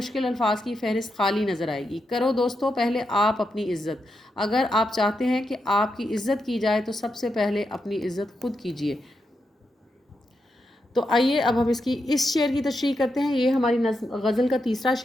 الفاظ کی فہرست خالی نظر آئے گی۔ کرو دوستو پہلے آپ اپنی عزت، اگر آپ چاہتے ہیں کہ آپ کی عزت کی جائے تو سب سے پہلے اپنی عزت خود کیجئے۔ تو آئیے اب ہم اس شعر کی تشریح کرتے ہیں۔ یہ ہماری غزل کا تیسرا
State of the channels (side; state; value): both; normal; correlation 0.85